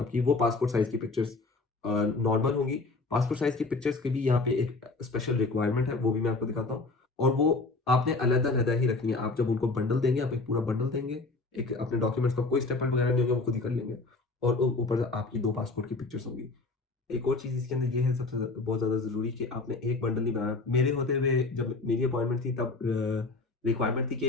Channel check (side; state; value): right; quieter; 3.5 dB